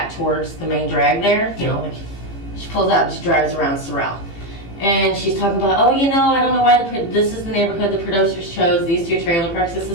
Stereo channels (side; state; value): right; late; 15 ms